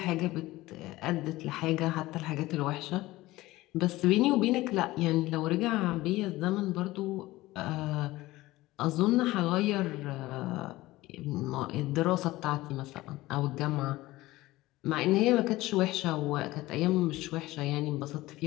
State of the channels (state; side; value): quieter; right; 18.2 dB